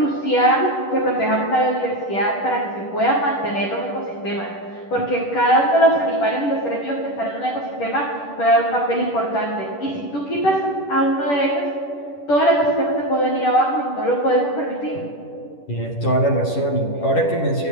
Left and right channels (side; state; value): right; late; 10 ms